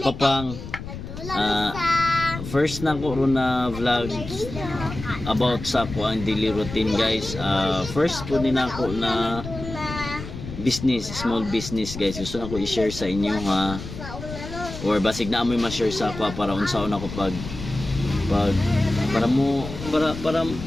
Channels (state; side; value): noise; left; rumble, 10 dB below the sound